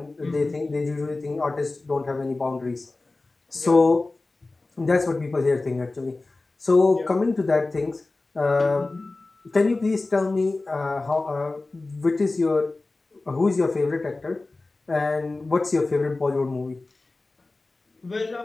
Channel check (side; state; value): right; quieter; 3.3 dB